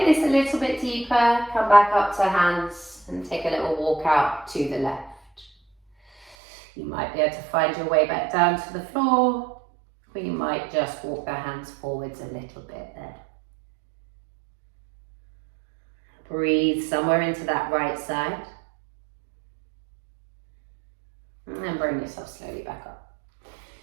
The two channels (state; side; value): drops out; left; at 6.4 s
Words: this a little bit deeper, come back up to hands and take a little walk out to the left. You might be able to find your way back down to the floor, or you might just walk the hands forwards a little bit there. Breathe somewhere into that right side. And then bring yourself slowly back up.